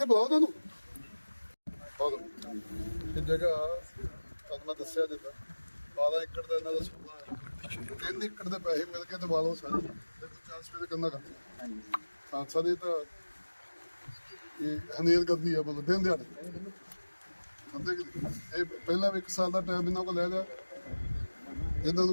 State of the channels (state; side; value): inverted; both; correlation -1.00